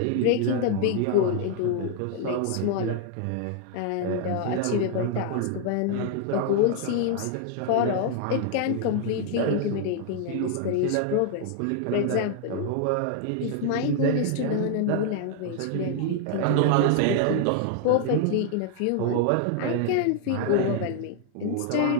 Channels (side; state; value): both; different; correlation 0.00